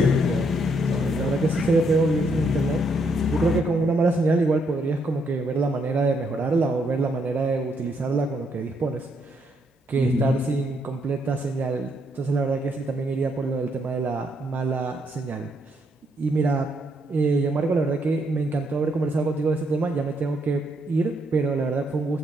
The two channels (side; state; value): both; normal; correlation 0.74